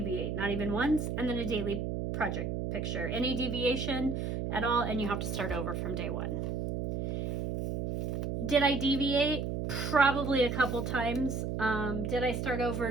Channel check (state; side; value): noise; right; hum, 2 dB below the sound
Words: not even once. And then a daily project picture. Any deviation at all, and you have to start over from day 1. Did I deviate? Probably a couple times. Did I start over?